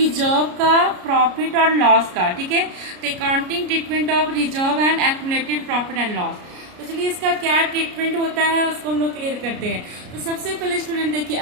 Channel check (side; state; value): left; late; 33 ms